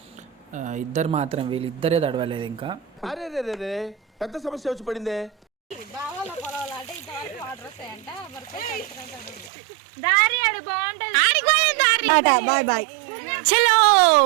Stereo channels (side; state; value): left; drops out; at 9.5 s